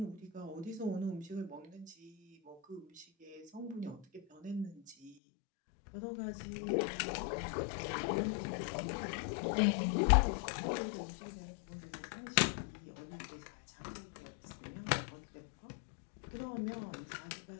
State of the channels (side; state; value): right; drops out; at 5.2 s